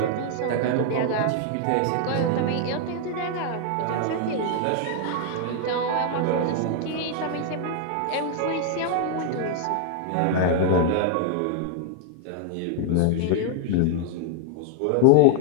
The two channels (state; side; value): different; both; correlation 0.00